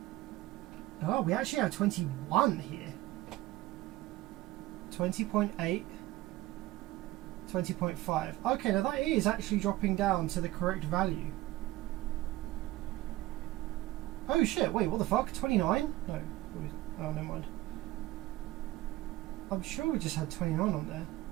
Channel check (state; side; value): quieter; left; 17.5 dB